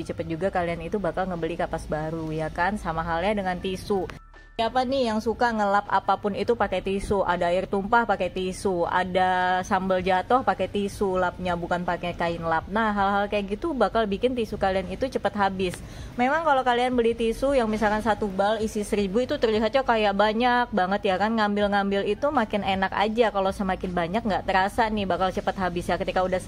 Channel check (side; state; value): both; identical; correlation 1.00